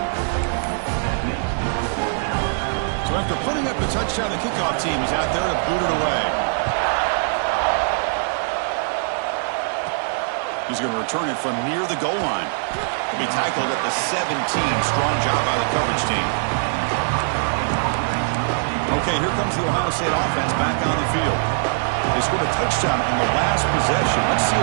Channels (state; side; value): silent; left; digital silence